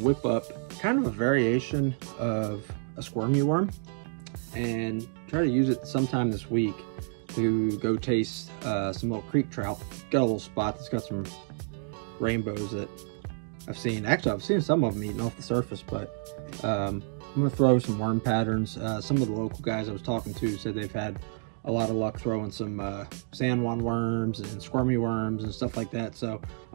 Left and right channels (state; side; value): silent; left; 58 dB below the other